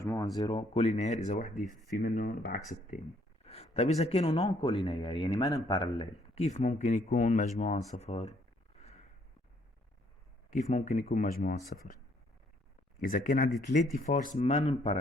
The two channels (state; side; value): normal; both; correlation 0.66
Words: 0 كولينير إذا وحدة في منهم بعكس التاني. طيب إذا كانوا نون كولينير يعني ما باراليل كيف ممكن يكون مجموعهم صفر؟ كيف ممكن يكون مجموعهم صفر؟ إذا كان عندي 3 فورس ما